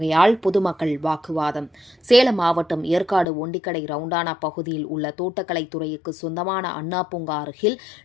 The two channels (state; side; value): drops out; right; at 3.2 s